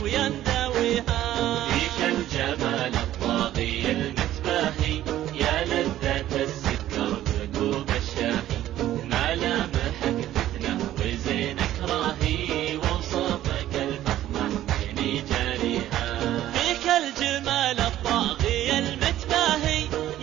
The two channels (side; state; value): left; quieter; 13.2 dB